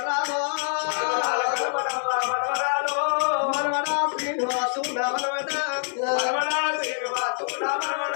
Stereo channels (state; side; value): silent; right; 56 dB below the other